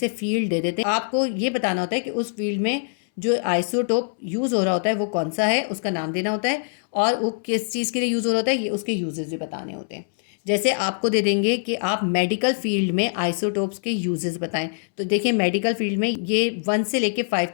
फील्ड दे देते हैं। आपको ये बताना होता है कि उस फील्ड में जो आइसोटोप यूज़ हो रहा होता है वो कौन सा है, उसका नाम देना होता है और वो किस चीज़ के लिए यूज़ हो रहा होता है, ये उसके यूजेस भी बताने होते हैं। जैसे आपको दे देंगे कि आप मेडिकल फील्ड में आइसोटोप्स के यूजेस बताएं, तो देखिए मेडिकल फील्ड में ये 1 से लेके 5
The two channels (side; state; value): right; silent; 63 dB below the other